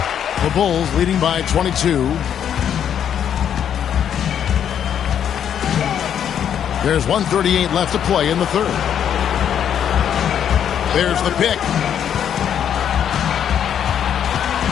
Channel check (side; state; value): right; quieter; 9.1 dB